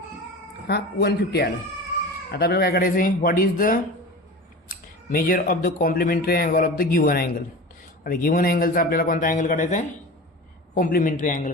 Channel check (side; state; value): both; normal; correlation 0.32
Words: हा 150 आला. आता आपल्याला काय करायचं आहे, what is the measure of the complementary angle of the given angle. आता गिव्हन अँगलचा आपल्याला कोणता अँगल काढायचा आहे, कॉम्प्लिमेंटरी अँगल